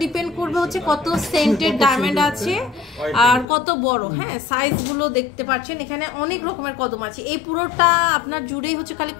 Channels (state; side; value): drops out; right; at 3.5 s